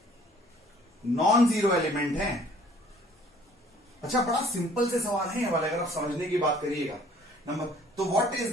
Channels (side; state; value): both; normal; correlation 0.56